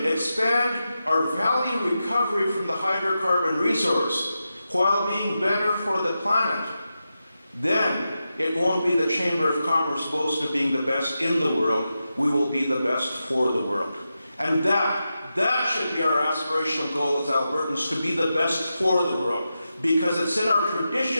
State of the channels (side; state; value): both; inverted; correlation -0.90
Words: expand our value recovery from the hydrocarbon resource while being better for the planet, then it won't be the Chamber of Commerce boast of being the best in the world. We will be the best for the world. And that should be our aspirational goal as Albertans, to be the best for the world. Because it's in our